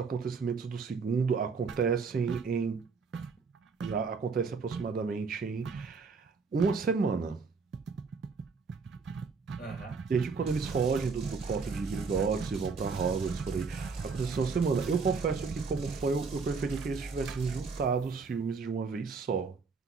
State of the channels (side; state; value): left; quieter; 4.9 dB